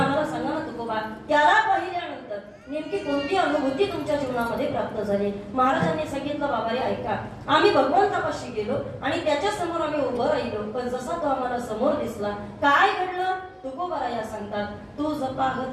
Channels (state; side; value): identical; both; correlation 1.00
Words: सांगा ना तुकोबा, त्याला पाहिल्यानंतर नेमकी कोणती अनुभूती तुमच्या जीवनामध्ये प्राप्त झाली. महाराजांनी सांगितलं, बाबा रे ऐका, आम्ही भगवंतापाशी गेलो आणि त्याच्या समोर आम्ही उभं राहिलो, पण जसा तो आम्हाला समोर दिसला काय घडलं तुकोबराया सांगतात, तुझ